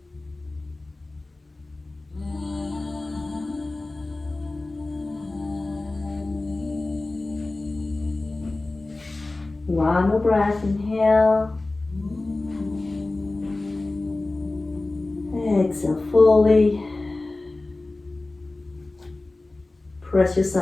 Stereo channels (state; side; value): quieter; right; 3.1 dB